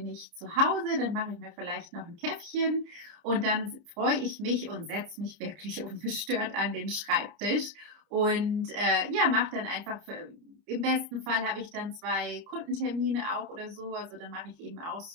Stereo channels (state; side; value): late; left; 30 ms